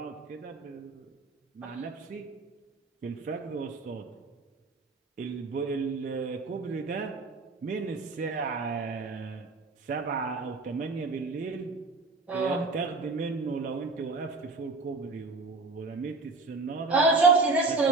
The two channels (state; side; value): quieter; left; 3.7 dB